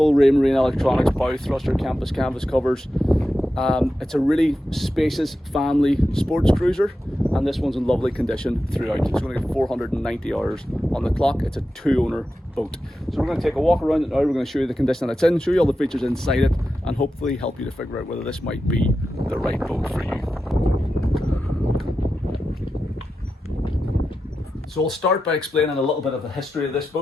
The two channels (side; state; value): both; normal; correlation 0.91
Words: Raymarine Electronics, bow thruster, canvas covers. It's a really spacious family sports cruiser, and this one's in lovely condition throughout. It's going to get 490 hours on the clock. It's a two-owner boat. So we're going to take a walk around it now. We're going to show you the condition that it's in, show you all the features inside it, and hopefully help you to figure out whether this might be the right boat for you. So I'll start by explaining a little bit of the history of this